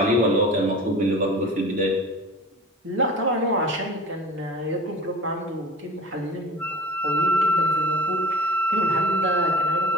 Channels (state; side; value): normal; both; correlation 0.39